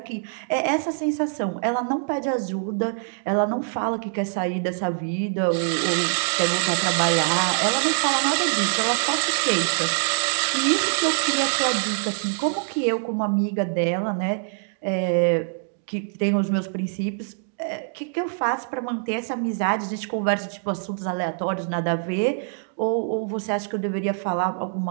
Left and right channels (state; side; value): silent; left; digital silence